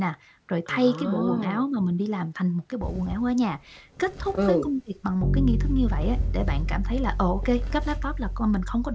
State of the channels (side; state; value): both; identical; correlation 1.00